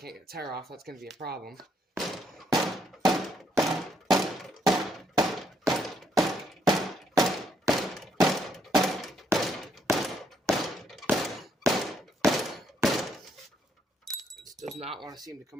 get the tire off, that's gonna be a problem. This does not want to seem to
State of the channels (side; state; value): both; normal; correlation 0.72